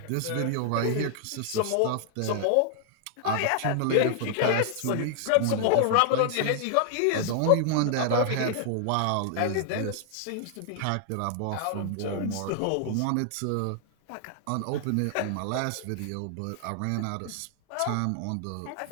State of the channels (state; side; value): different; both; correlation 0.00